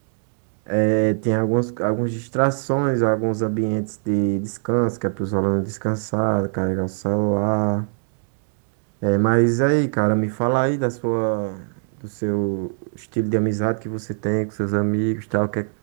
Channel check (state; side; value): silent; left; digital silence